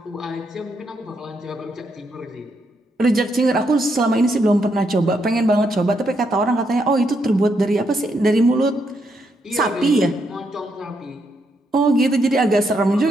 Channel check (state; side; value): normal; both; correlation 0.78